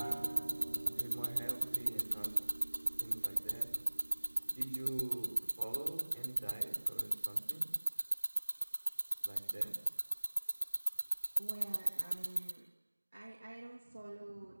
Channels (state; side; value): inverted; both; correlation -1.00